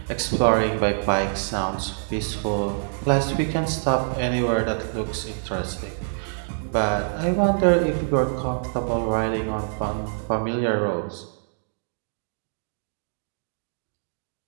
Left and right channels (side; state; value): left; silent; digital silence